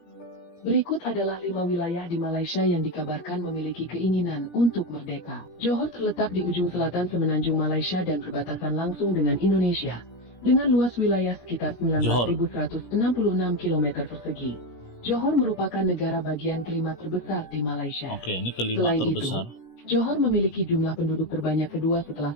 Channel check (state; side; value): late; right; 17 ms